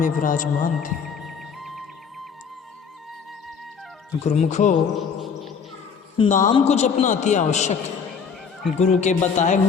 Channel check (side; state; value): right; quieter; 6.2 dB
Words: विराजमान थे। गुरुमुखो, नाम को जपना अति आवश्यक है। गुरु के बताए